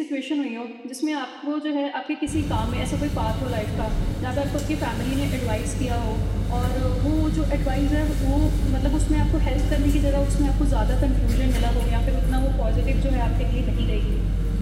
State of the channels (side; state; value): both; identical; correlation 1.00